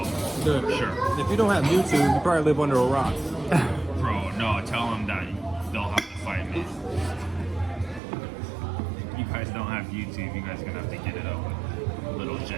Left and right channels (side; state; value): left; drops out; at 8.0 s